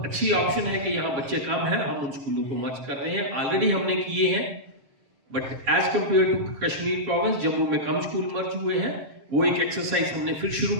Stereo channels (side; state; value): left; late; 7.4 ms